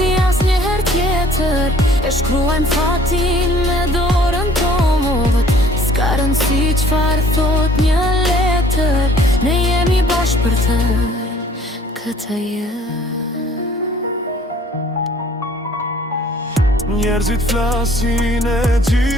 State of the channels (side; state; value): both; normal; correlation 0.55